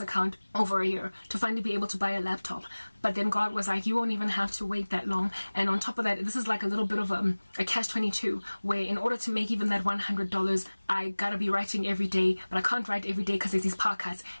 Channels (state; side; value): inverted; both; correlation -1.00